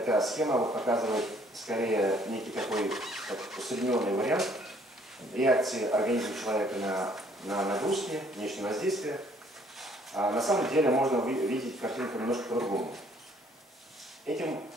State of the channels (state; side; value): normal; both; correlation 0.62